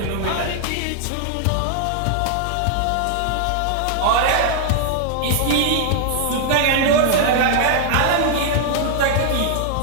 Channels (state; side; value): different; both; correlation 0.00